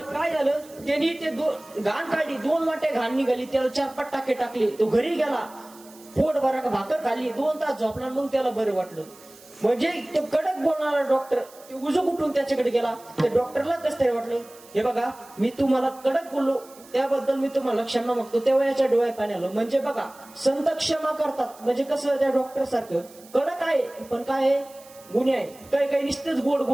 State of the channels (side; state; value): right; noise; hiss, 23 dB below the sound